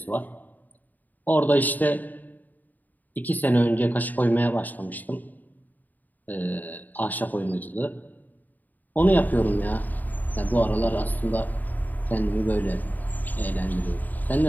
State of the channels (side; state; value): right; late; 0.084 ms